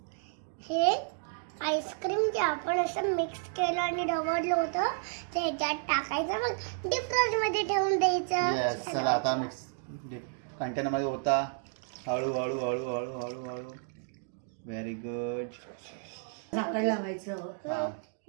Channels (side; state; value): left; silent; digital silence